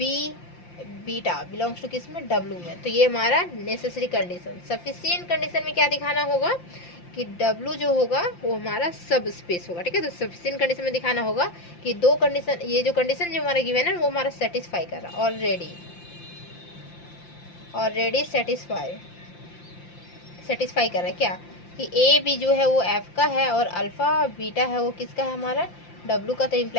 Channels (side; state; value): right; late; 5.8 ms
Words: beta belongs to किस में? डब्ल्यू में। तो ये हमारा नेसेसरी कंडीशन। सफिशिएंट कंडीशन में क्या दिखाना होगा कि डब्ल्यू जो होगा वो हमारा सब स्पेस होगा, ठीक है। तो सफिशिएंट कंडीशन में दिखाना होगा कि दो कंडीशन, ये जो कंडीशन जो हमारा गिवन है वो हमारा सेटिस्फाई कर रहा है ऑलरेडी सेटिस्फाई कर रहा है। क्या कि ए बी जो है वो एफ का है, और अल्फा बीटा है वो किसका है? हमारा डब्ल्यू का। तो